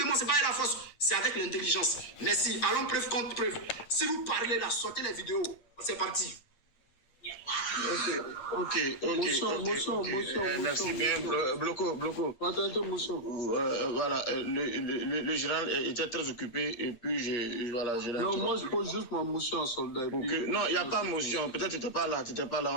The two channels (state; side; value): late; right; 8.6 ms